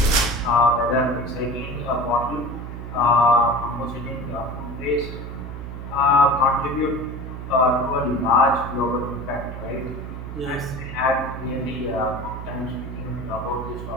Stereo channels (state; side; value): noise; right; hum, 8 dB below the sound